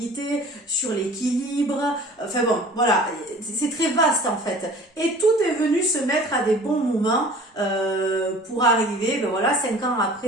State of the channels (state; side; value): normal; both; correlation 0.46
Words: sur l'équilibre. Enfin bon, voilà, c'est très vaste en fait. Et tout est venu se mettre à des bons moments pour arriver, ben voilà, 5 ans